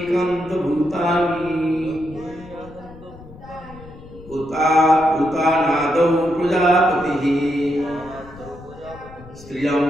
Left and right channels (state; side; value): noise; left; rumble, 19 dB below the sound